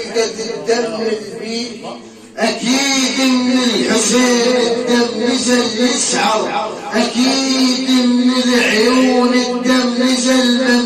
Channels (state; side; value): identical; both; correlation 1.00